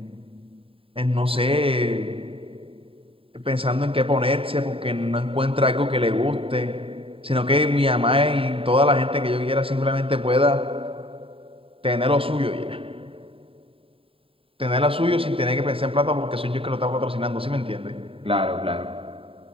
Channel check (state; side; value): late; left; 0.27 ms